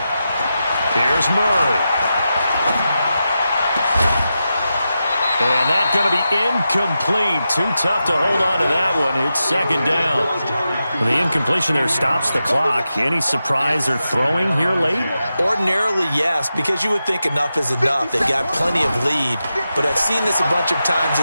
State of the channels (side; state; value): both; inverted; correlation -0.90